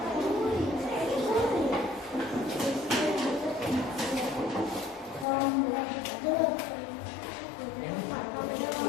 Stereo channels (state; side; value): drops out; right; at 5.2 s